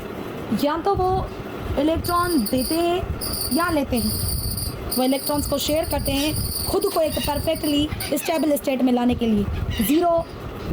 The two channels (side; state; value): both; identical; correlation 1.00